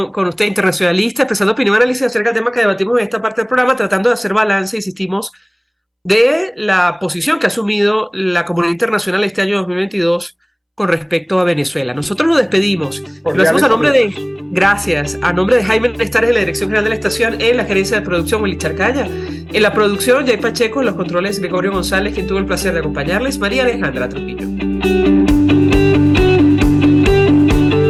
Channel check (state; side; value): identical; both; correlation 1.00